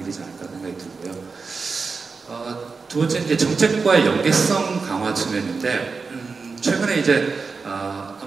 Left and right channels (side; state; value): left; quieter; 4.7 dB